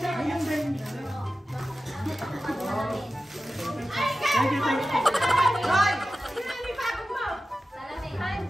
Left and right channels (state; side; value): normal; both; correlation 0.94